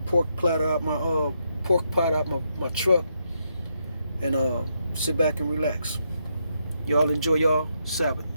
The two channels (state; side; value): inverted; both; correlation -0.80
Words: pork platter out my truck and sit back and relax. Y'all enjoy y'all Sabbath.